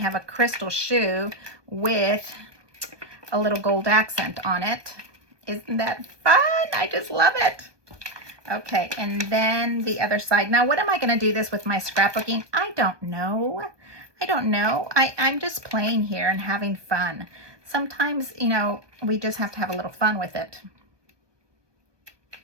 a crystal shoe with a little gold accent on it. Isn't that fun? I just love it. Okay, and then the other side. Now, what am I going to do this with my scrapbooking? I don't know. I don't know. I'm just playing here and having fun. Sometimes, you know, we just have to have a little fun with it.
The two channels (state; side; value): late; left; 1.2 ms